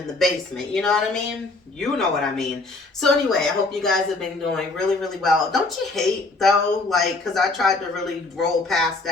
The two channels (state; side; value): quieter; right; 3.3 dB